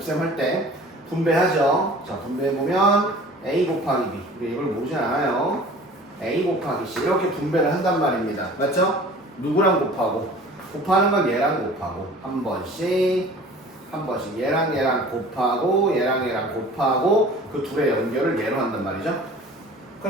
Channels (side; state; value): both; normal; correlation 0.45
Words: 할 때 분배하죠. 자 분배해보면 A 곱하기 B 우리 이걸 모르지 않아요. A 곱하기 C 이렇게 분배를 한단 말입니다. 맞죠? 누구랑 곱하고 곱하는 건 얘랑 곱하고 한 번씩 얘랑 곱하고 얘랑 곱하고 그 둘의 연결을 얘로 한단 말이죠.